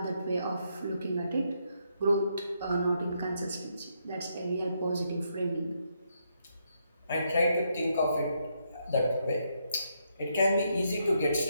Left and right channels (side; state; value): both; inverted; correlation -0.77